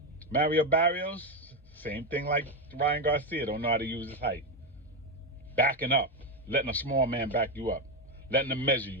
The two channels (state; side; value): normal; both; correlation 0.09